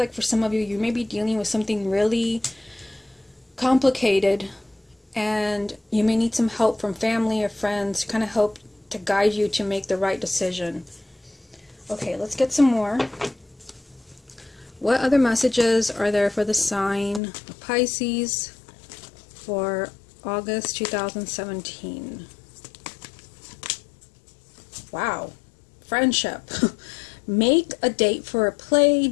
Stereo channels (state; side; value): drops out; right; at 17.2 s